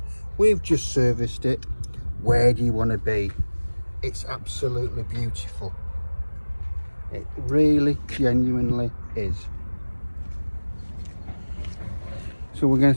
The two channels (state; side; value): inverted; both; correlation -1.00